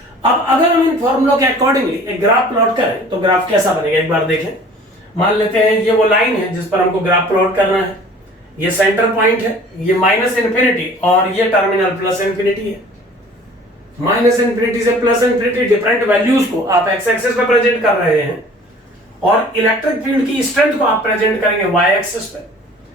अब अगर हम इन फॉर्मूलों के अकॉर्डिंगली एक ग्राफ प्लॉट करें तो ग्राफ कैसा बनेगा एक बार देखें। मान लेते हैं ये वो लाइन है जिस पर हमको ग्राफ प्लॉट करना है। ये सेंटर पॉइंट है, ये -इंफिनिटी और ये टर्मिनल +इंफिनिटी है। -इंफिनिटी से +इंफिनिटी डिफरेंट वैल्यूज को आप एक्स एक्सिस पे प्रेजेंट कर रहे हैं और इलेक्ट्रिक फील्ड की स्ट्रेंथ को आप प्रेजेंट करेंगे वाई एक्सिस पे।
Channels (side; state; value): both; normal; correlation 0.48